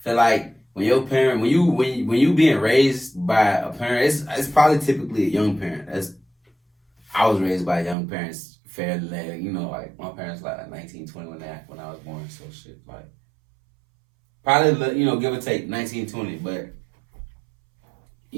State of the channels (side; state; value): left; drops out; at 8.0 s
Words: feel like when your parent, when you being raised by a parent, it's probably typically a young parent. I was raised by young parents fairly, you know, like my parents like 19, 20 when I was born, so shit, like probably, you know, give or take 19, 20, but